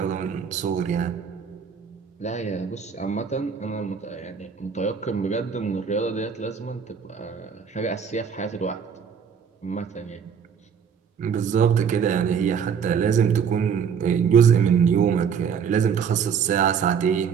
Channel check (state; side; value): quieter; left; 7.0 dB